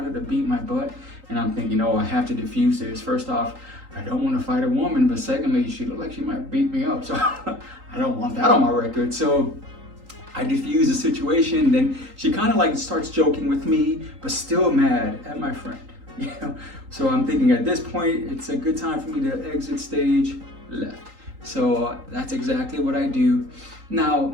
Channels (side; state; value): left; late; 3.8 ms